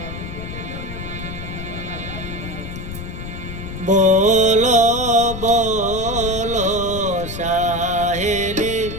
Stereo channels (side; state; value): left; noise; rumble, 8 dB below the sound